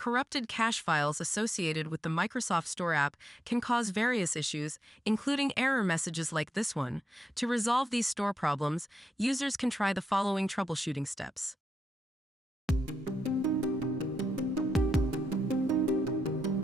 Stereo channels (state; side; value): normal; both; correlation 0.85